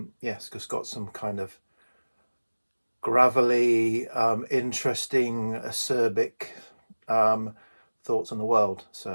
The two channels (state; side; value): inverted; both; correlation -1.00